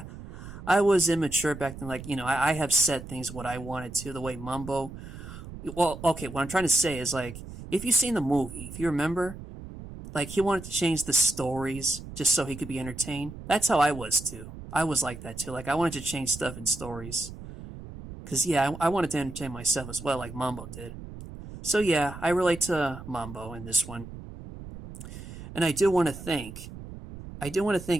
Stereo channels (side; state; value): right; noise; rumble, 13 dB below the sound